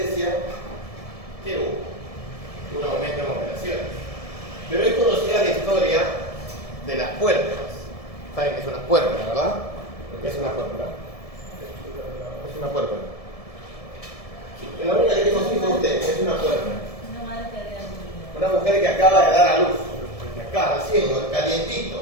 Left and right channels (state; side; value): late; right; 1.7 ms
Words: ¿qué hubo? Un aumento en operaciones. Pero es conocida la historia de las puertas. ¿Saben qué es una puerta, verdad? ¿Qué es una puerta? Es una puerta. La única que tengo hijos usted es una puerta. Una mujer que acaba de dar a luz, que acaba recién, calientito.